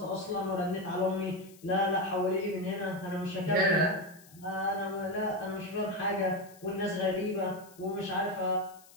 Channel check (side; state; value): left; noise; hiss, 24 dB below the sound